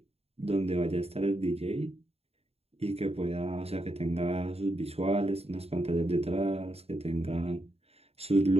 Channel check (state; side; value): late; left; 0.29 ms